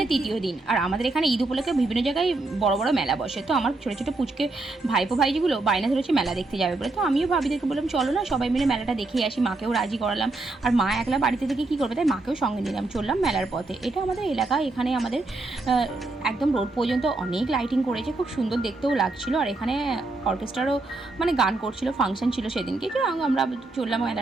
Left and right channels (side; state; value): left; quieter; 3.2 dB